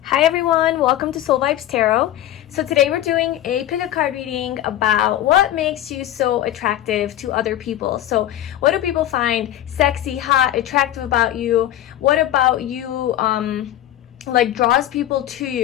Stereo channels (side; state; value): right; quieter; 12.8 dB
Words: Hi everyone, welcome to Soul Vibes Tarot. So today we're doing a pick a card reading about what makes you so attractive to other people. So what do people find sexy, hot, attractive about you? What about you like draws people to